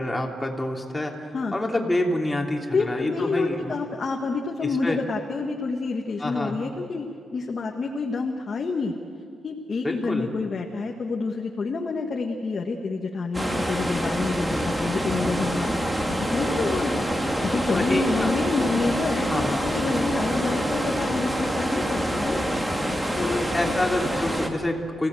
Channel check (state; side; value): normal; both; correlation 0.89